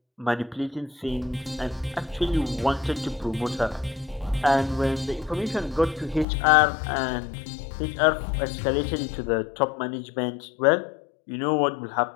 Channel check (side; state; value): right; drops out; at 6.2 s